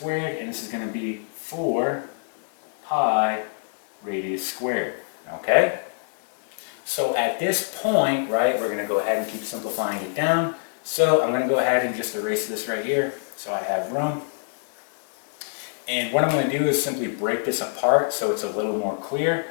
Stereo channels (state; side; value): silent; right; digital silence